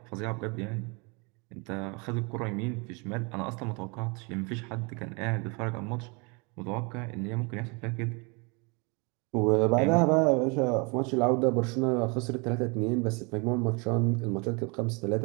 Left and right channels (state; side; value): quieter; left; 30.9 dB